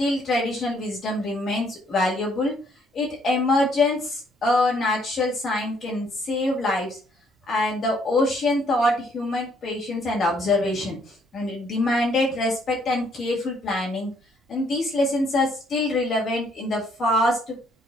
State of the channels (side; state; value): both; normal; correlation 0.67